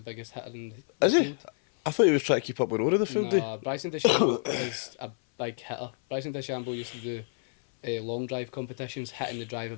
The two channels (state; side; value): silent; right; 58 dB below the other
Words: biggest hitter in the field. I thought he was trying to keep up with Rory the full day. No, Bryson DeChambeau is a big hitter. Bryson DeChambeau used to do long drive competitions, hitting the drive